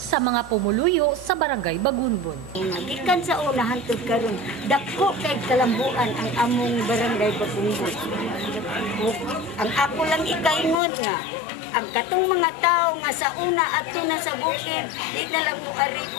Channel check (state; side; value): drops out; right; at 10.8 s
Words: mga pumuluyo sa Barangay Bagunbon. Gikan sa una hangtod karon, dako kay kalambuan ang among Barangay Bagunbon. Ang ako lang ikaingon nga ang katong mga tao nga sa una adto na sa bukid, di na lang moari